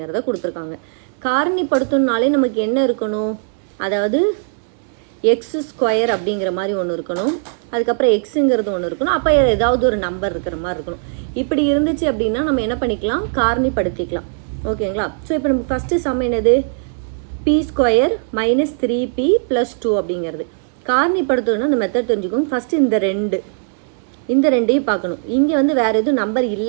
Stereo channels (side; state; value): left; silent; 67 dB below the other